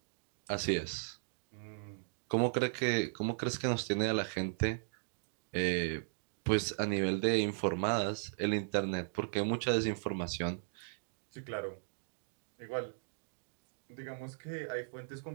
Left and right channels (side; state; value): left; silent; digital silence